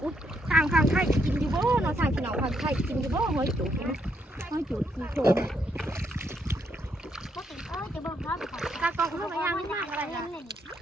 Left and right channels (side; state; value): both; normal; correlation 0.75